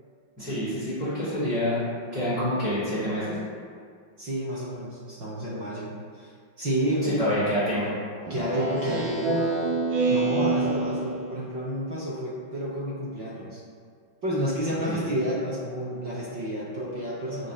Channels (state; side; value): late; left; 5.7 ms